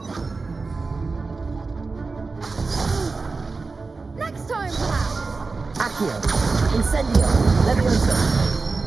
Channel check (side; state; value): left; quieter; 4.0 dB